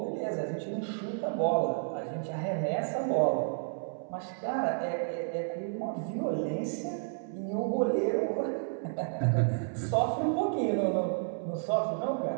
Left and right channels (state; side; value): silent; left; 57 dB below the other